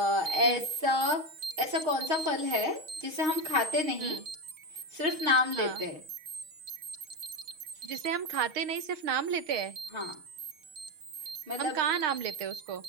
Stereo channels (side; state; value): left; late; 6.4 ms